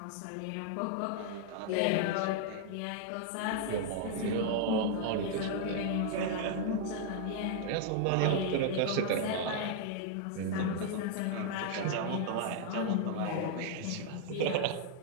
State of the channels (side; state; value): both; different; correlation 0.00